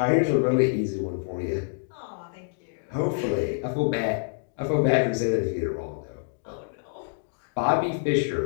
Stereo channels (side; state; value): right; silent; digital silence